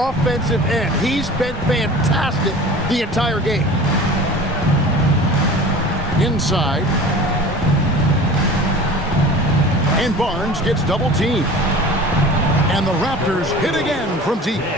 end. He's been fantastic the entire game. Inside. And Barnes gets double teamed. And the Raptors hit again from deep.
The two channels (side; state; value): both; normal; correlation 0.39